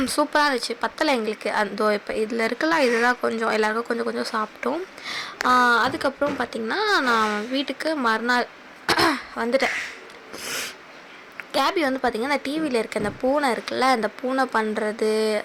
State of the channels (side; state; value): both; identical; correlation 1.00